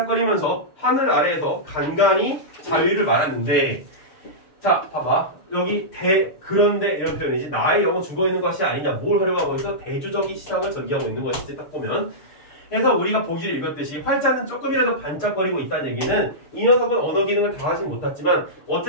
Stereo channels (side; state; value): right; late; 6.6 ms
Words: 하늘 아래에서 간간히 자유를 말하는데 자 봐봐 여기 그런데 이런 표현이지 나의 영은 죽어있는 것이 아니냐 뭘 하려고 하고 있어 대주적인 시상을 전개하고 있는 것이지 딱 보면 그래서 우리가 보기를 읽었듯이 활자는 조금이라도 반짝거리고 있다는 얘기는 이 녀석은 언어 기능을 다 하진 못했지만